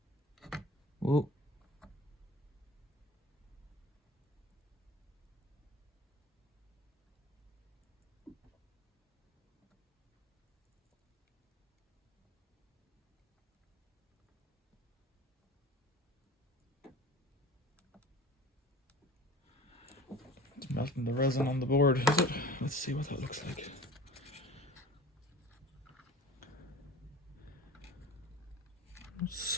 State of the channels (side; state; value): both; normal; correlation 0.40